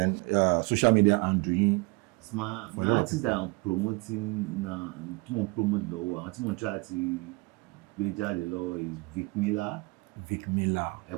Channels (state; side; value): quieter; left; 26.8 dB